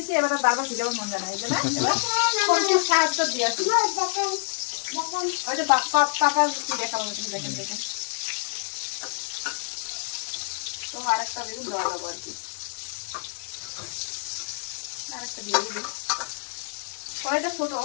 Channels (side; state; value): right; silent; digital silence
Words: এবার বারবার ভিজাবার মন জানা এই জন্য সাহায্য দিয়ে আসি ওই যে পাপার কি দেখাবো দেখেন তো আরেকটা বেগুন দেওয়া যাবো আর কি আরেকটা দিয়ে দিবি কড়াইটা ছোট